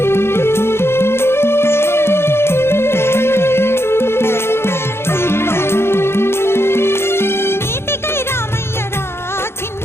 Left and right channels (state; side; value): late; right; 0.12 ms